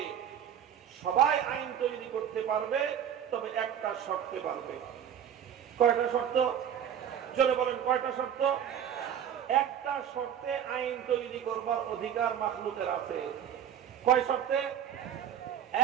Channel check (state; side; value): quieter; left; 9.2 dB